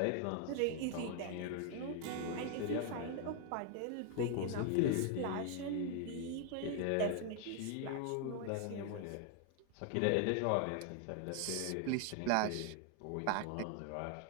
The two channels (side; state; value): both; different; correlation 0.00